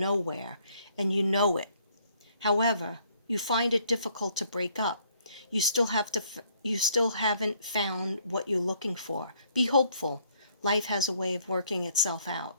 and you know it. However, you find it difficult to break up. You still haven't found what you're looking for. Be hopeful. Life has a way of working itself out.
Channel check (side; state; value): both; inverted; correlation -0.65